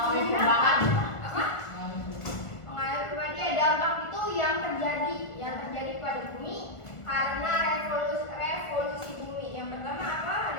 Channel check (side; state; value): right; late; 1.5 ms